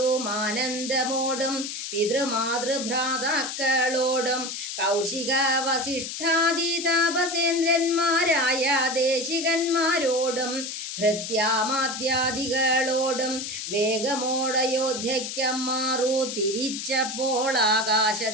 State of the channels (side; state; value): left; noise; hiss, 6 dB below the sound